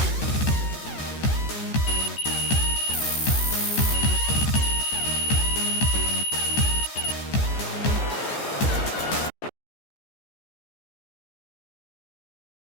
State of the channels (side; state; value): right; late; 14 ms